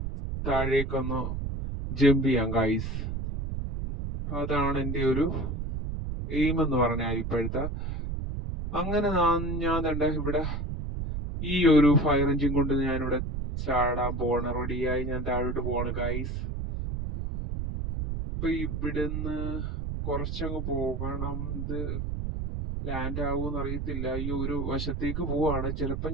താഴേക്കൊന്ന് ജമ്പ് ചെയ്യാം ഗൈസ്. അതാണ് എൻ്റെ ഒരു എയിം എന്ന് പറഞ്ഞാൽ ഇപ്പോഴത്തെ. അങ്ങനെ ഞാൻ തന്നെ ഇവിടെ ഈ ഒരു ഫയർ എഞ്ചിൻ കൊണ്ട് ഞാനിവിടെ ചാടാൻ പോവാണ്. റെഡിയായി ഞാൻ താഴോട്ട് പോവാണ് ഗൈസ്. ഇപ്പൊ ഇവിടുന്ന് കുറച്ചങ്ങ് പോകണം. ഇത് ലാൻഡ് ആവുമെന്ന് അറിയത്തില്ല. ഈ ഒരു വശത്തേക്ക് പോവാണ്. ചിലപ്പോൾ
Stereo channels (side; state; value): right; noise; rumble, 3 dB below the sound